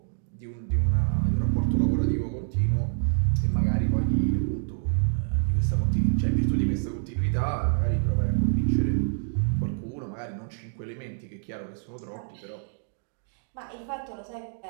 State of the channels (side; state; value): left; silent; digital silence